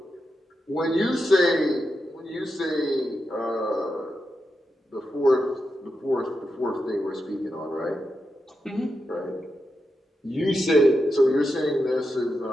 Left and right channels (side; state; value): both; normal; correlation 0.88